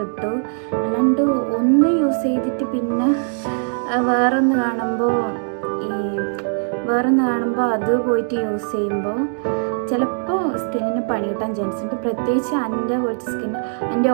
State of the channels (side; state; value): left; silent; digital silence